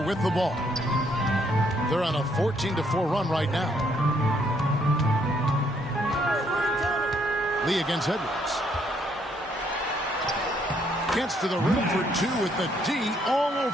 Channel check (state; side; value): normal; both; correlation 0.70